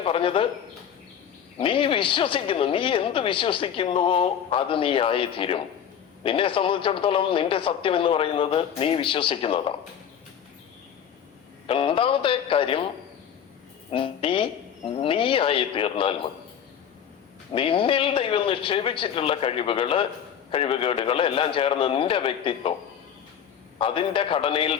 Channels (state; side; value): quieter; right; 8.6 dB